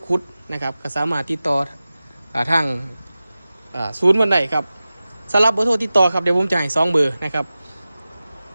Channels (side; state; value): both; inverted; correlation -0.96